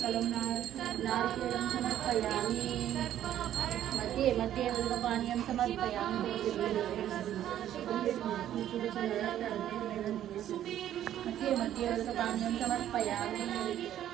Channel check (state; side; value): quieter; left; 11.5 dB